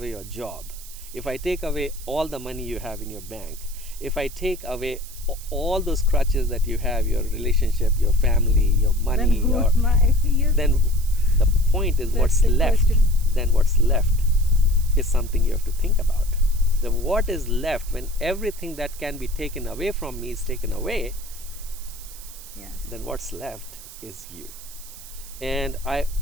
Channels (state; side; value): noise; right; hiss, 16 dB below the sound